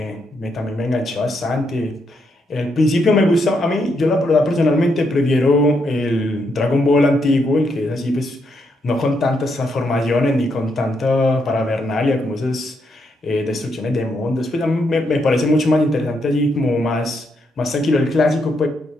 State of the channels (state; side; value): normal; both; correlation 0.78